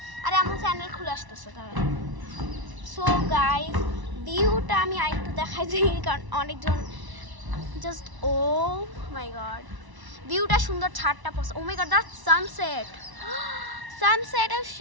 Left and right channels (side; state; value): left; late; 1.0 ms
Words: আরে আমার চ্যানেল খুলে আসতেছে তারা। সো গাইস, ভিউটা আমি আরেকটু দেখাই দিই, কারণ অনেকজন জাস্ট, ও মাই গড, ভিউটা সুন্দর। ছাদটা ও মাই গড, দ্যাটস সানসেট। সানসেট